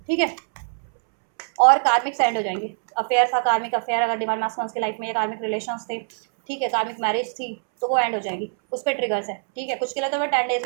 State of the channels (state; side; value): silent; left; 63 dB below the other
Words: ठीक है। और कार्मिक एंड हो जाएंगे, अफेयर था, कार्मिक अफेयर अगर डिवाइन मास्कुलिन की लाइफ में, या कार्मिक रिलेशंस थे, ठीक है, कार्मिक मैरिज थी, तो वो एंड हो जाएगी, उस पर ट्रिगर्स है, ठीक है, कुछ के लिए तो वो 10 डेज